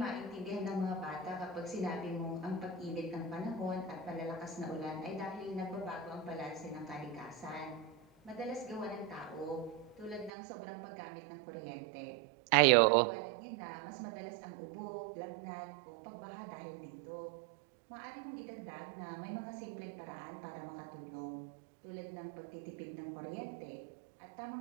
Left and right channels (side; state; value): left; drops out; at 10.3 s